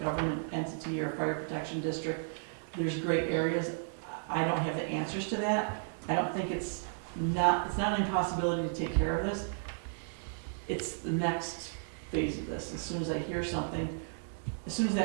entity or fire protection district. There's gray areas. I don't have the answers to that. I don't think it's not an impossibility to take care of this. It's the next phase of this. As soon as I hear something,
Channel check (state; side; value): silent; left; 55 dB below the other